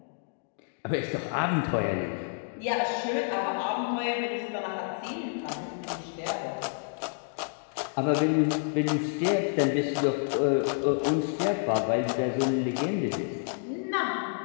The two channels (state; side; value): silent; right; 58 dB below the other